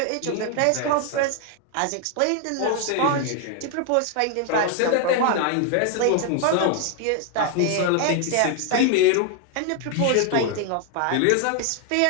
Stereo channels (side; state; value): both; different; correlation 0.00